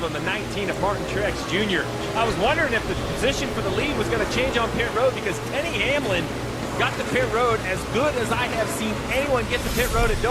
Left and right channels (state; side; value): identical; both; correlation 1.00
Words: him, the 19 of Martin Truex Jr. I was wondering if the position for the lead was going to change on pit road because Denny Hamlin got the pit road as good as I have seen anyone get the pit road at